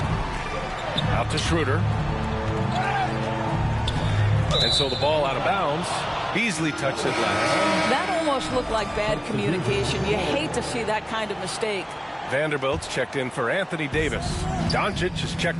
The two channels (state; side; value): identical; both; correlation 1.00